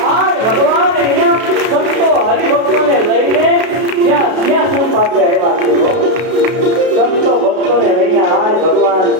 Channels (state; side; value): late; left; 32 ms